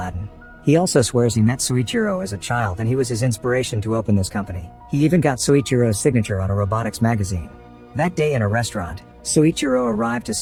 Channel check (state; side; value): identical; both; correlation 1.00